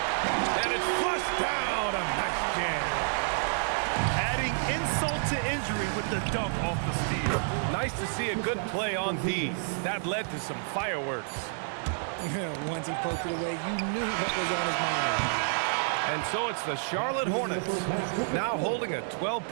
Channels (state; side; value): silent; left; 58 dB below the other